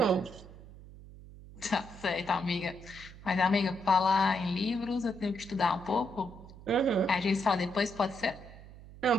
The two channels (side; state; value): right; noise; hum, 18 dB below the sound